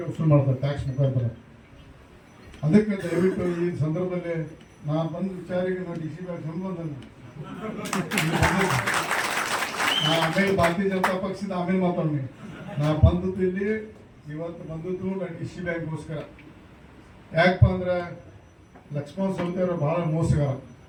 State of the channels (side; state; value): both; identical; correlation 1.00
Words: ವಸೂಲು ಮಾಡ್ತಾರೆ ಟ್ಯಾಕ್ಸ್ ಮುಖಾಂತರ. ಅದಕ್ಕೆ ದಯವಿಟ್ಟು ಈ ಸಂದರ್ಭದಲ್ಲಿ ನಾನು ಬಂದ ವಿಚಾರಿಗೆ ನಾವು ಡಿ ಸಿ ಬ್ಯಾಂಕ್ ಸಂಬಂಧ ಆಮೇಲೆ ಭಾರತೀಯ ಜನತಾ ಪಕ್ಷದ ಆಮೇಲೆ ಮಾತಾಡೋಣ. ನಾ ಬಂದದ್ದು ಇಲ್ಲಿ ಇವತ್ತು ಬಂದದ್ದು ನಾನು ಡಿ ಸಿ ಬ್ಯಾಂಕ್ಗೋಸ್ಕರ. ಯಾಕಪ್ಪ ಅಂದ್ರೆ ಲಕ್ಷ್ಮಣ ಸವದಿ ಅವರು ಭಾಳ ಮೋಸಗಾರ,